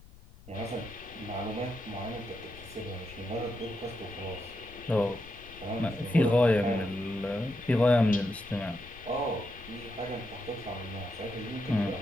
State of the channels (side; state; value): left; noise; rumble, 19 dB below the sound